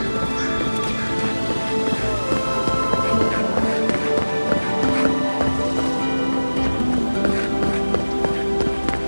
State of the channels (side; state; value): both; inverted; correlation -1.00